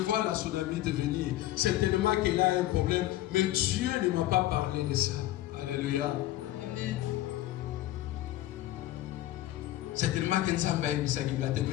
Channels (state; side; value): quieter; right; 14.9 dB